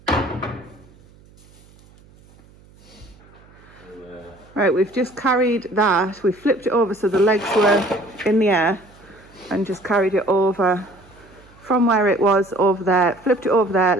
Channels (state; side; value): noise; right; hum, 27 dB below the sound